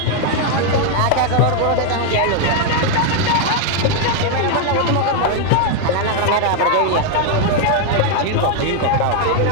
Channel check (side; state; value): both; different; correlation 0.00